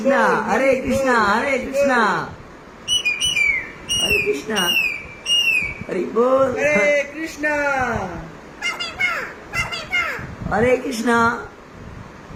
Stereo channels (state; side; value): identical; both; correlation 1.00